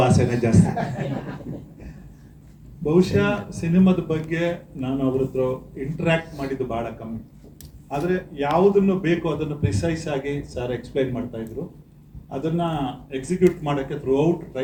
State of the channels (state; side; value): identical; both; correlation 1.00